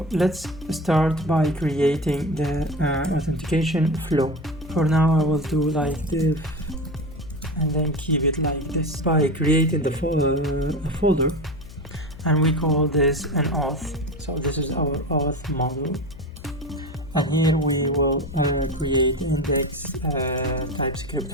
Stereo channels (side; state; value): left; noise; hum, 17 dB below the sound